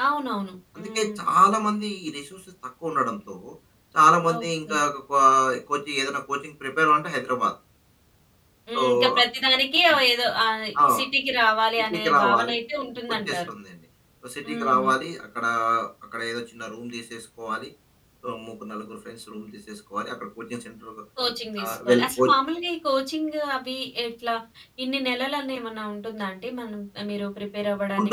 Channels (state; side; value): identical; both; correlation 1.00